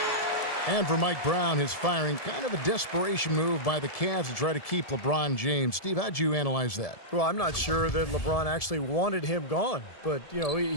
And for Mike Brown, his firing, kind of a desperation move by the Cavs to try to keep LeBron James. Steve, how'd you analyze that? Well, I'm not sure that LeBron actually wanted him gone, but, you know,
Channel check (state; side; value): late; right; 1.7 ms